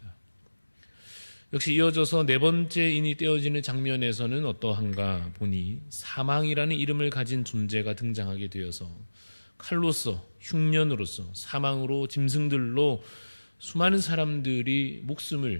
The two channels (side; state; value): both; inverted; correlation -1.00